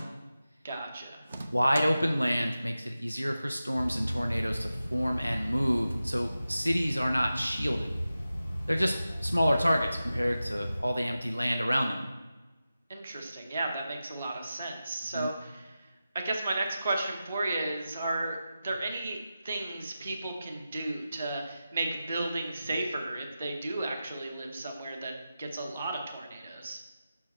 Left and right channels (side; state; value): both; inverted; correlation -0.93